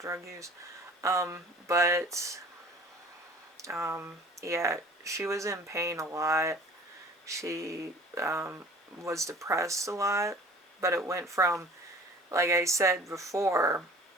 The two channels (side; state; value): both; normal; correlation 0.47